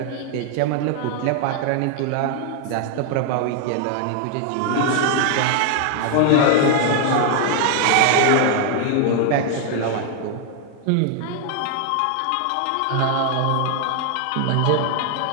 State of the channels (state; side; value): different; both; correlation 0.00